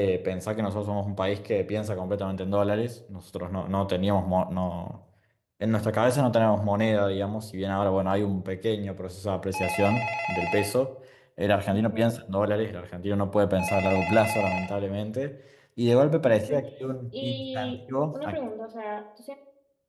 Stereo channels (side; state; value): both; identical; correlation 1.00